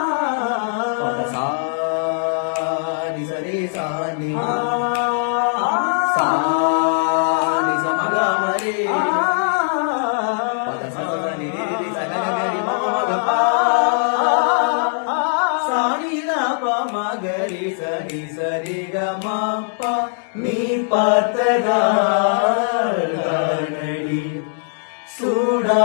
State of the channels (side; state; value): right; silent; digital silence